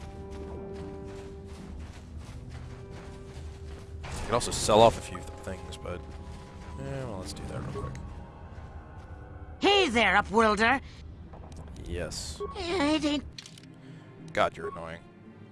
I could also sell off a few things, but well, let's do that real quick. Hey there, Upworlder! Yes. It ain't... God, you're annoying.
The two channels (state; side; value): identical; both; correlation 1.00